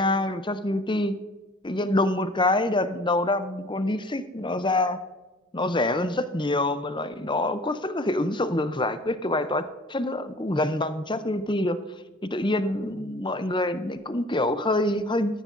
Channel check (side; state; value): both; normal; correlation 0.49